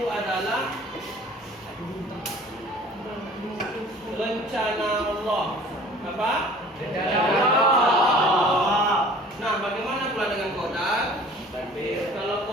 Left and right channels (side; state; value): both; normal; correlation 0.48